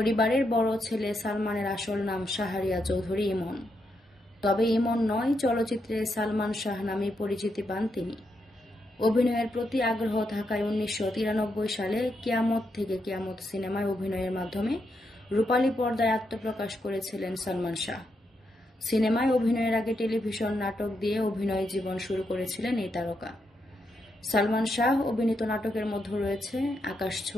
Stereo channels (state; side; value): normal; both; correlation 0.81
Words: বড় ছেলে সালমানের আসল নাম শাহরিয়া চৌধুরী ইমন। তবে ইমন নয়, চলচ্চিত্রে সালমান শাহ নামে পরিচিতি পান তিনি। অভিনয়ের প্রতি আগ্রহ থাকায় 1993 সালে কিয়ামত থেকে কিয়ামত সিনেমায় অভিনয়ের মাধ্যমে রূপালী পর্দায় আত্মপ্রকাশ করেছিলেন সালমান শাহ। সিনেমায় অভিনয়ের আগে টেলিভিশন নাটক দিয়ে অভিনয় জীবন শুরু করেছিলেন এই তারকা। সালমান শাহ অভিনীত নাটকের মধ্যে রয়েছে